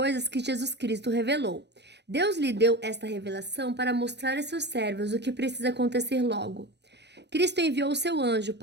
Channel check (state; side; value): late; left; 0.50 ms